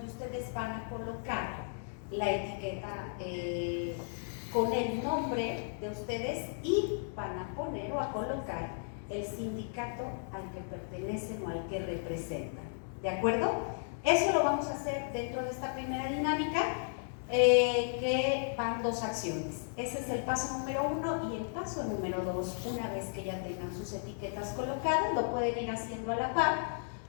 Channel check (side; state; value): right; silent; digital silence